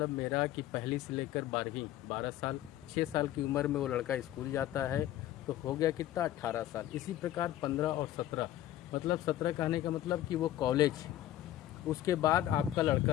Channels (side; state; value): right; quieter; 13.0 dB